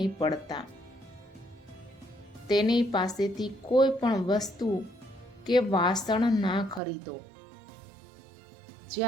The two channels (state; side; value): drops out; left; at 6.8 s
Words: પડતા. તેની પાસેથી કોઈ પણ વસ્તુ કે વાસણ ના ખરીદો.